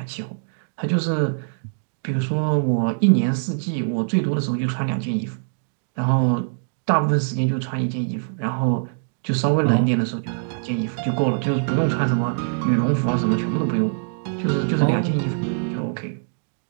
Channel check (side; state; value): left; silent; digital silence